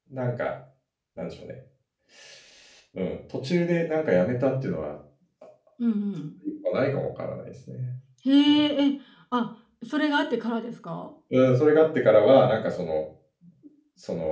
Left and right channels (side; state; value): both; identical; correlation 1.00